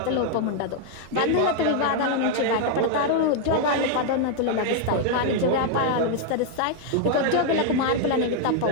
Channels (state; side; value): different; both; correlation 0.00